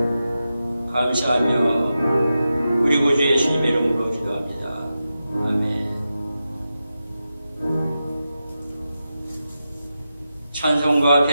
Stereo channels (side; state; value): both; inverted; correlation -0.90